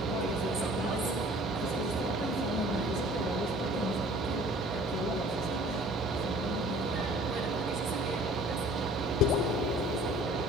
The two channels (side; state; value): both; normal; correlation 0.50